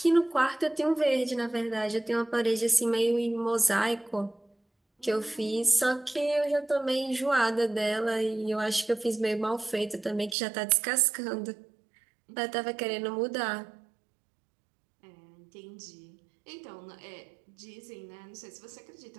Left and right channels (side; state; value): left; drops out; at 10.4 s